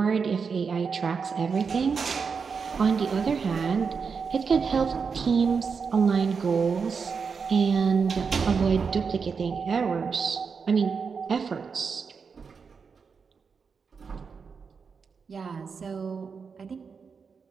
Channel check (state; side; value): quieter; left; 5.6 dB